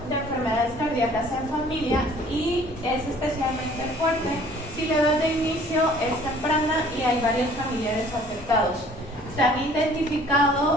de enfermedades cardíacas en familia, y es especialmente fuerte si la edad de inicio es temprana y hay varios familiares afectados. Se han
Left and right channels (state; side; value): normal; both; correlation 0.54